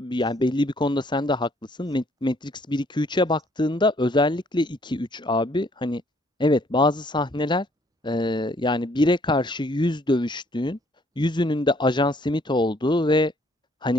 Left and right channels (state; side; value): normal; both; correlation 0.64